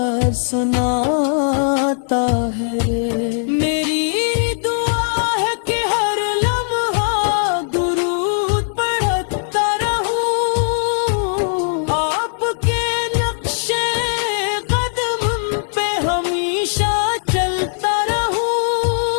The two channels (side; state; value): right; silent; digital silence